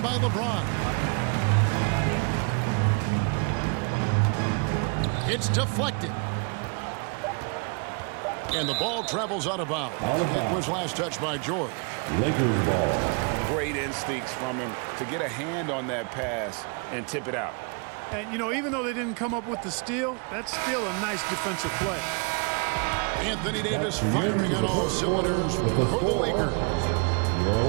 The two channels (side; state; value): left; quieter; 35.8 dB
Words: by LeBron. It's deflected. And the ball travels out of bounds. It was last touched by George. Lakers ball. Great instincts from him to get a hand on that pass and tip it out. And, you know, even though they didn't come up with the steal, that's still a nice defensive play. Anthony Davis firing on all cylinders for the Lakers.